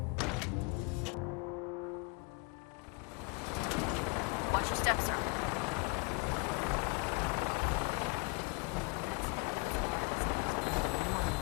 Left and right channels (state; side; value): quieter; right; 30.3 dB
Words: Watch your steps, sir. I heard that Elder Maxon got that scar in his head.